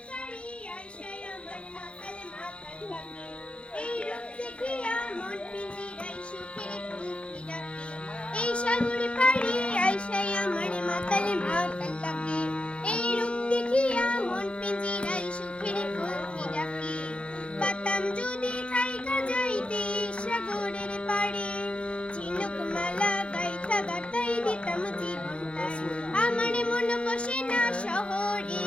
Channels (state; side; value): late; right; 0.059 ms